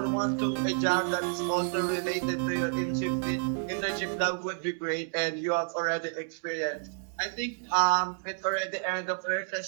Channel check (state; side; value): silent; left; digital silence